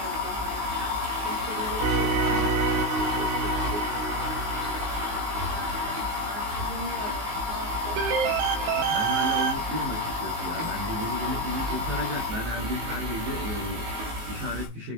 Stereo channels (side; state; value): left; late; 19 ms